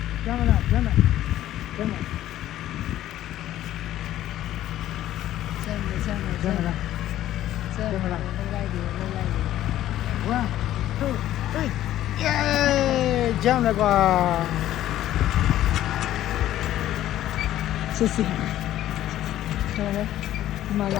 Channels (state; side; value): quieter; right; 13.2 dB